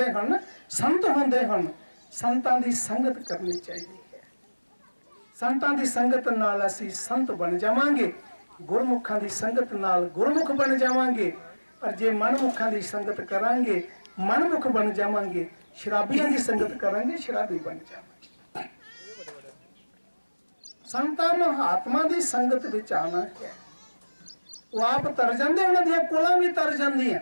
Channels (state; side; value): inverted; both; correlation -1.00